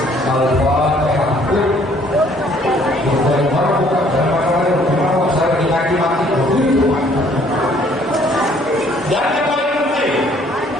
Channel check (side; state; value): both; normal; correlation 0.61